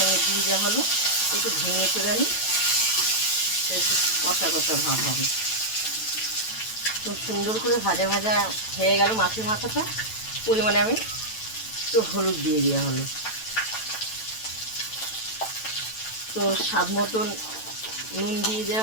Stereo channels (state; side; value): late; right; 9.1 ms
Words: দিয়ে দেওয়া হলো। একটু ভেঙে করে নিই, একটু কষা কষা ভাব হবে। খুব সুন্দর করে ভাজা ভাজা হয়ে গেল মাছের মাথাটা। পরিমাণে আমি একটু হলুদ দিয়ে দেওয়া হলো। তো স্বাদ মতন নুন দিয়ে